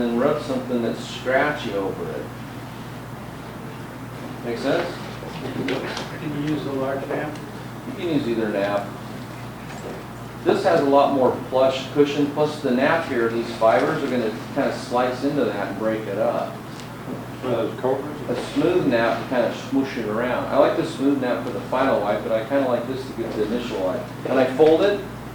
rub something that's scratchy over it. Make sense? Can you use the large nap? You can use either nap. This has a lot more plush cushion, plus the nap here, these fibers are going to kind of slice into that and break it up. One of those covers? A smooth nap to kind of smoosh it around. I like the smooth nap for the final wipe, but I kind of like this to get the initial wipe. And I fold it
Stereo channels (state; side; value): identical; both; correlation 1.00